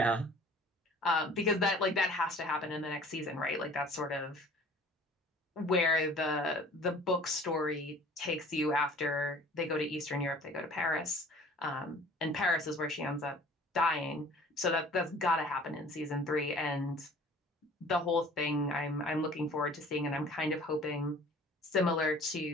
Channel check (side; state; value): both; normal; correlation 0.48